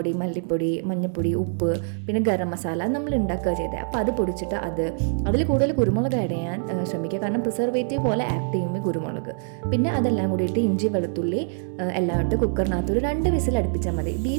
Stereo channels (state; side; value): silent; left; 62 dB below the other